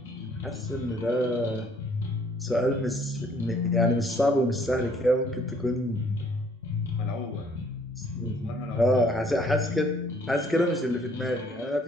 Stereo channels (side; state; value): both; normal; correlation 0.62